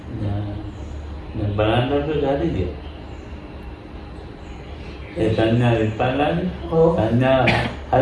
Tanya Vipalan, Tanya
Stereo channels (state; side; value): identical; both; correlation 1.00